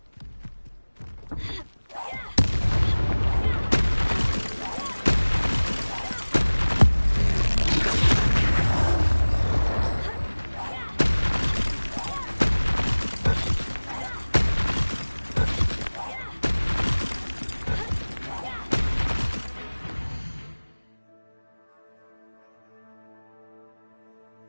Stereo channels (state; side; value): inverted; both; correlation -1.00